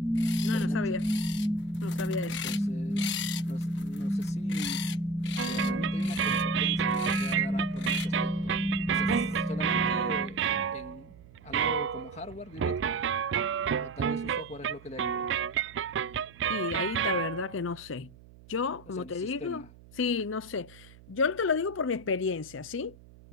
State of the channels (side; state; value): right; noise; hum, 22 dB below the sound